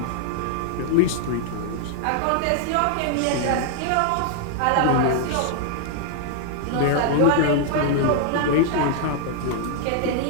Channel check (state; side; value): different; both; correlation 0.00